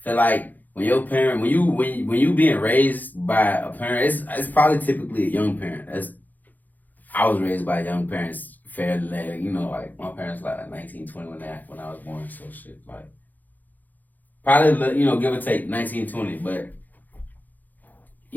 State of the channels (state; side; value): late; right; 0.083 ms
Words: feel like when your parent, when you being raised by a parent, it's probably typically a young parent. I was raised by young parents fairly, you know, like my parents like 19, 20 when I was born, so shit, like probably, you know, give or take 19, 20, but